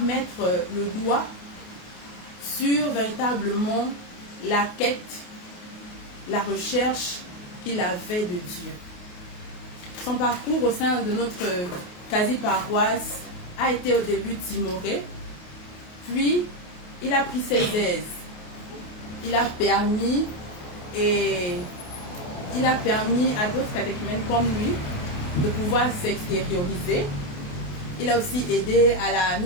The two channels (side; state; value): right; late; 28 ms